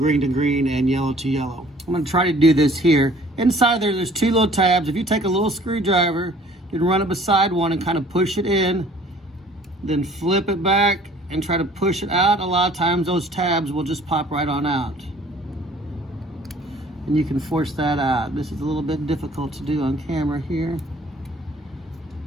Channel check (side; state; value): both; normal; correlation 0.54